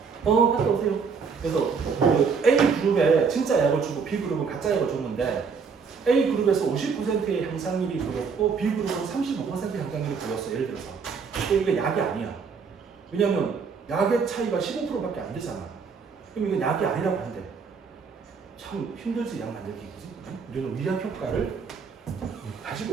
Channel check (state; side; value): quieter; left; 5.6 dB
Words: 갔다 오세요. 그래서 그 A 그룹에 진짜 약을 주고 B 그룹은 가짜 약을 줬는데 A 그룹에서 50%의 향상률이 보였고 B 그룹은 35%의 향상률이 보였어. 예를 들어서. 근데 이게 약이 아니야. 왜냐면 약의 차이가 15%밖에 안 되잖아. 그럼 이건 약이 아니라고 한대. 참 힘들지 약 만들기 그지? 우리는 위약 효과를 가지고